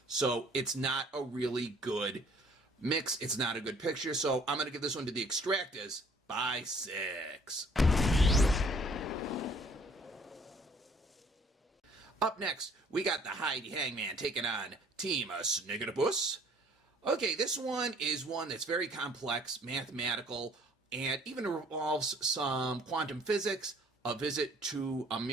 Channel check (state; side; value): normal; both; correlation 0.57